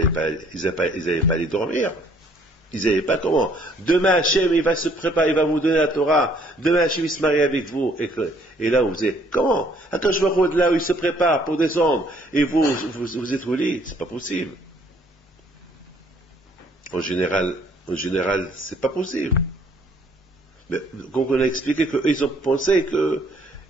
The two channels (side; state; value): both; normal; correlation 0.62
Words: aller dormir. Ils ne savaient pas comment. Demain, Hachem, il va se préparer, il va vous donner la Torah. Demain, Hachem, il se marie avec vous. Et là, vous dites, comment? Attends, je vois de là où il se prépare pour descendre. Et vous êtes au lit. C'est pas possible. En général, c'est pas possible. Mais, donc on a expliqué qu'eux, ils ont pensé que